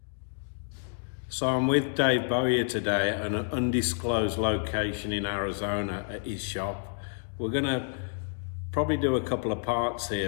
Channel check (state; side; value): silent; right; digital silence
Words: So I'm with Dave Bowyer today at an undisclosed location in Arizona at his shop. We're going to probably do a couple of parts here,